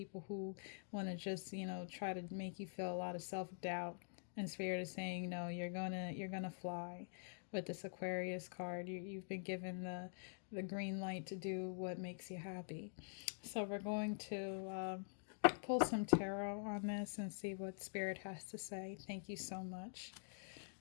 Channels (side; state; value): right; silent; digital silence